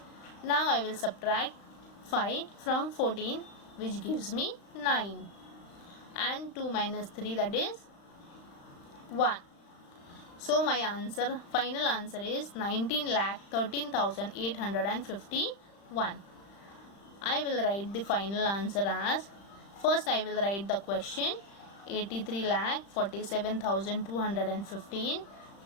Now I will subtract 5 from 14, which gives me 9. And 2 minus 3, that is 1. So my answer, final answer is 19,13,851. I will write the final answer as, first I will write the question 83,47,215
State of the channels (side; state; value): right; late; 35 ms